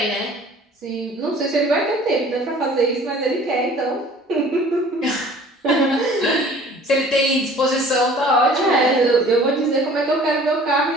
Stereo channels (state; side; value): normal; both; correlation 0.49